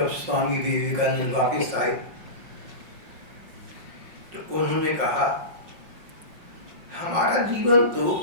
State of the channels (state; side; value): late; left; 5.5 ms